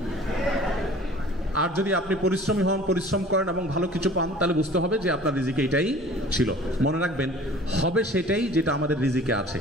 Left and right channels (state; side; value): normal; both; correlation 0.47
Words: আর যদি আপনি পরিশ্রমী হন, পরিশ্রম করেন এবং ভালো কিছু পান, তাহলে বুঝতে হবে যে আপনার রিজিকে এটাই ছিল। মনে রাখবেন, হবে সেটাই যেটা আমাদের রিজিকে আছে।